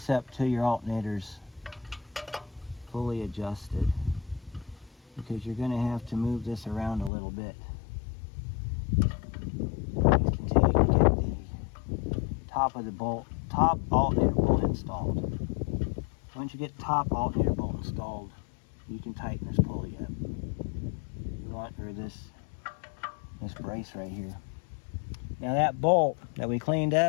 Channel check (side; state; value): right; drops out; at 7.1 s